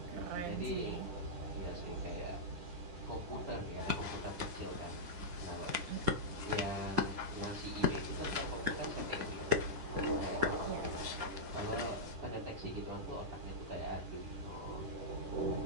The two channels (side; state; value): left; late; 10 ms